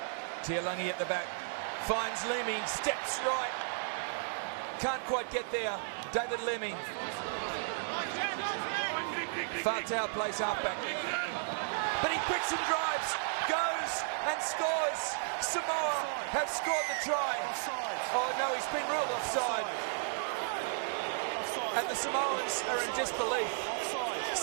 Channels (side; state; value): left; silent; digital silence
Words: Tuialangi at the back. Finds Lemi, steps right. Can't quite get there. David Lemi. Fatau plays halfback. But he quicks and drives, goes and scores. Samoa have scored the try. Oh no, he's been ruled offside. And the Samoans are in disbelief.